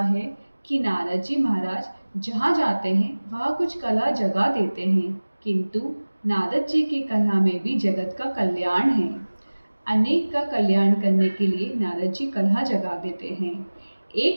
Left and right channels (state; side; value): inverted; both; correlation -1.00